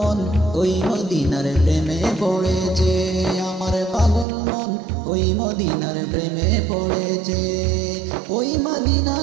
ওই মদিনার প্রেমে পড়েছে। আমার পাগল মন ওই মদিনার প্রেমে পড়েছে। ওই মদিনা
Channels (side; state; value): left; drops out; at 4.2 s